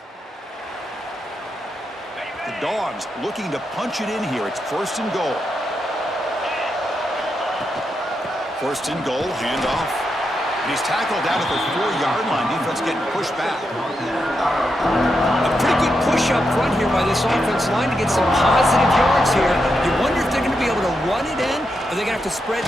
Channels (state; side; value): normal; both; correlation 0.85